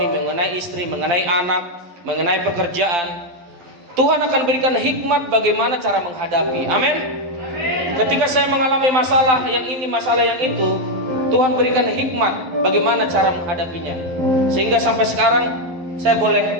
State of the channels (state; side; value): late; left; 12 ms